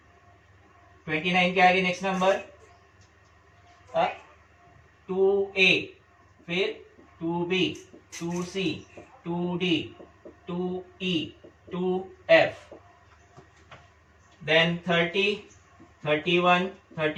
29 के आगे नेक्स्ट नंबर 2A, फिर 2B 2C 2D 2E 2F, then 30 31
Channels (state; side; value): identical; both; correlation 1.00